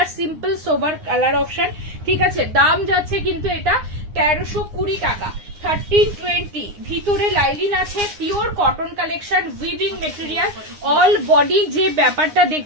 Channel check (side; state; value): left; late; 9.7 ms